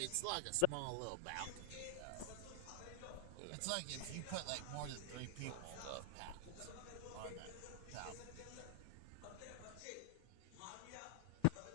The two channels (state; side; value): different; both; correlation 0.00